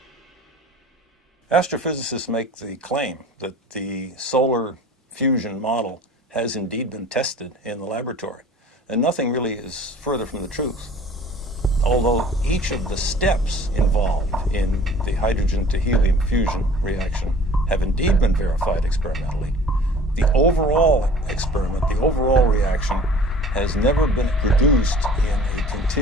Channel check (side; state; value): both; normal; correlation 0.47